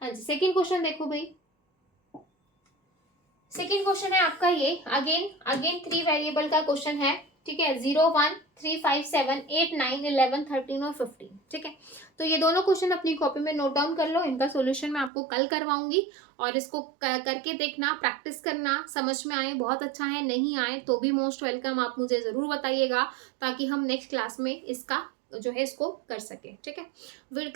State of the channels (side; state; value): left; drops out; at 15.1 s